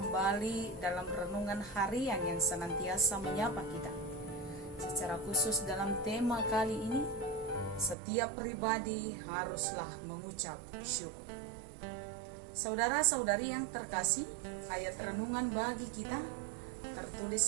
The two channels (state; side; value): drops out; left; at 8.0 s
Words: dalam renungan harian yang senantiasa menyapa kita. Secara khusus dalam tema kali ini, setiap pribadi haruslah mengucap syukur. Saudara-saudari yang terkasih, ayat renungan bagi kita